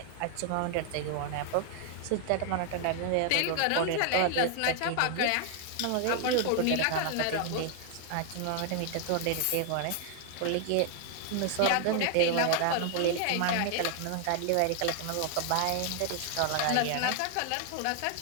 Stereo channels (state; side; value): different; both; correlation 0.00